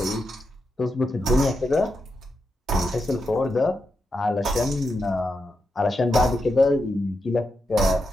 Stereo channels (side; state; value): both; normal; correlation 0.86